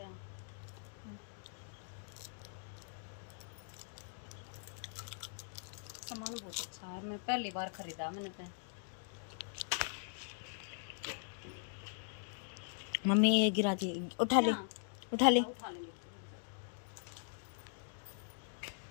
सामान बहुत अच्छा है, मैं पहली बार खरीदा मैंने तो। मम्मी ये गिरा दी, उठा ले, उठा ले। उठा ले।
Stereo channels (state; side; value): silent; right; digital silence